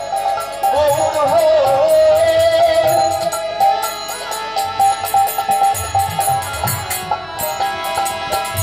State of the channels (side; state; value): left; noise; hum, 26 dB below the sound